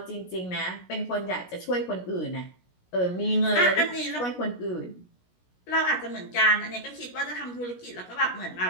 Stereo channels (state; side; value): late; right; 17 ms